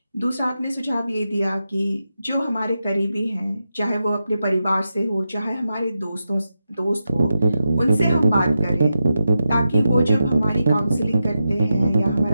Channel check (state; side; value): inverted; both; correlation -0.88